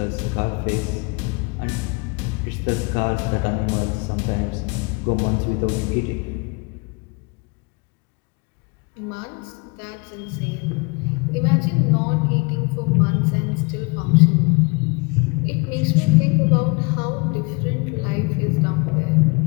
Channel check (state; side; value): quieter; right; 28.7 dB